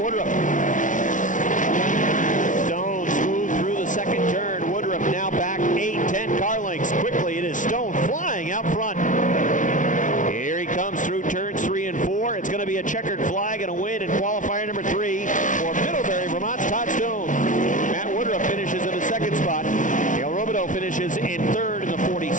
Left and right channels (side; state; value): right; late; 0.37 ms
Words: Woodruff. Stone smooth through the 2nd turn. Woodruff now back 8-10 car lengths. Quickly it is Stone flying out front. Here he comes through turns 3 and 4. It's going to be a checkered flag and a win in qualifier number 3 for Middlebury, Vermont's Todd Stone. Matt Woodruff finishes in the 2nd spot. Cale Robideau finishes in 3rd in the